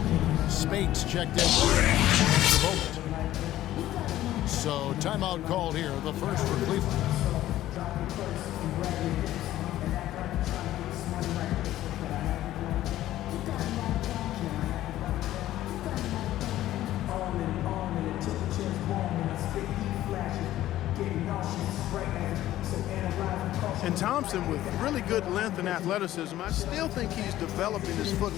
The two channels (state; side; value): quieter; right; 14.0 dB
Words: Spates checked in. So timeout called here, the first for Cleveland. And Thompson, with really good length and athleticism, I still think he's developing his